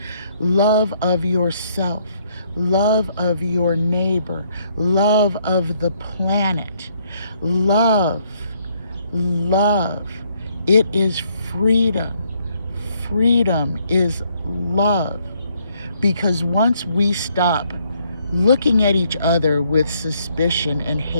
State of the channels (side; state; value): both; inverted; correlation -0.69